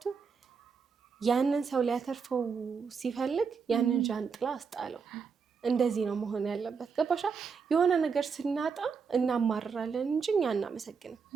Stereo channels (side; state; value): left; quieter; 5.7 dB